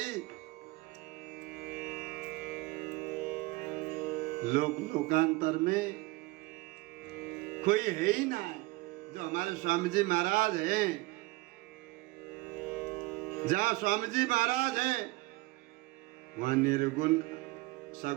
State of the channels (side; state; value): left; quieter; 21.5 dB